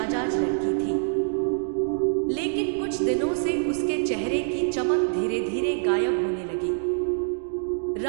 लड़की थी, लेकिन कुछ दिनों से उसके चेहरे की चमक धीरे धीरे गायब होने लगी।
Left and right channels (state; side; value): silent; left; digital silence